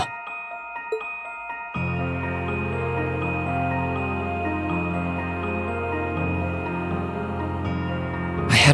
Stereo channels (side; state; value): both; identical; correlation 1.00